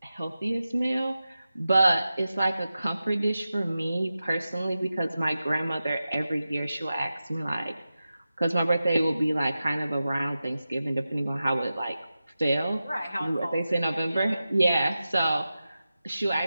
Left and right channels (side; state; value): both; inverted; correlation -0.93